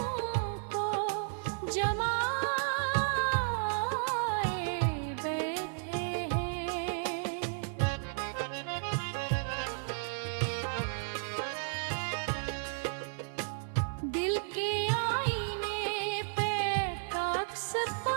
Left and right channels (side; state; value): left; silent; 56 dB below the other